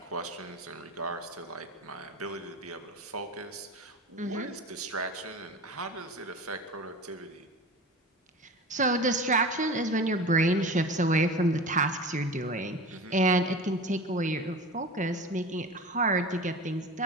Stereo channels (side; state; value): both; normal; correlation 0.33